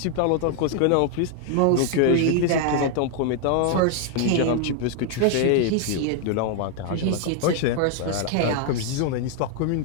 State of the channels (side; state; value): both; different; correlation 0.00